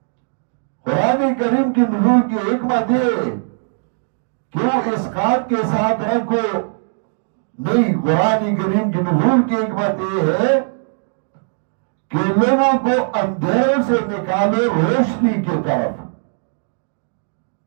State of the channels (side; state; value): left; silent; digital silence